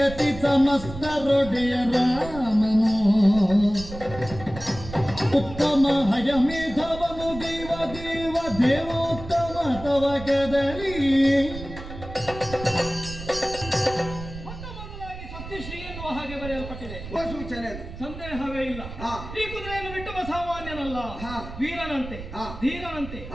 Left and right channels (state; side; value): noise; right; rumble, 12 dB below the sound